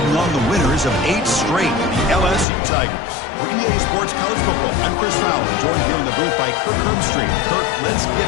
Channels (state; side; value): drops out; right; at 2.5 s